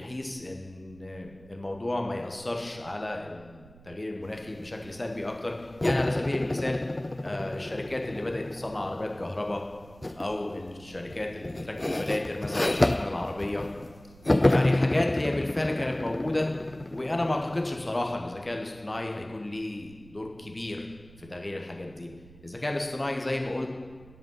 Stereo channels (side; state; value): right; noise; rumble, 22 dB below the sound